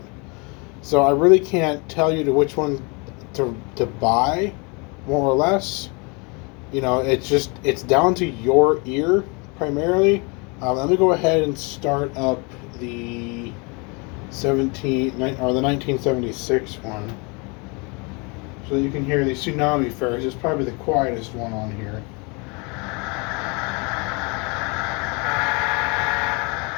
So I really can't tell you which one to buy, more or less. It's down to your ear, primarily. Let me go ahead and start up the 1976 one, so that you can hear the Tsunami first. It's probably the quietest one on here.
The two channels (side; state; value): right; quieter; 30.6 dB